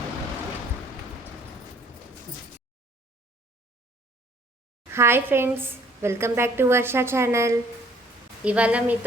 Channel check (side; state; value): both; normal; correlation 0.58